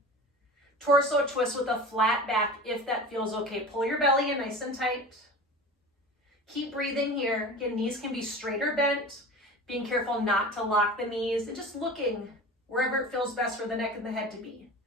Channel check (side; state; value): both; normal; correlation 0.35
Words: torso twist with a flat back if that feels okay. Pull your belly in nice and tight. Keep breathing here. Again, knees can be straight or bent. Being careful not to lock the knees and just looking wherever it feels best for the neck and the head to be.